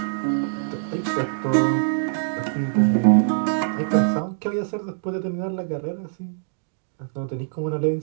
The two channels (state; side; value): silent; left; digital silence